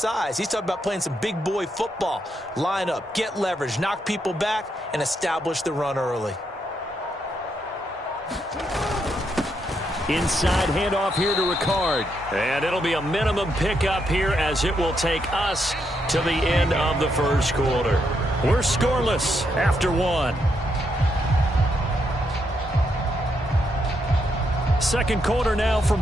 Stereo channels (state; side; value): normal; both; correlation 0.79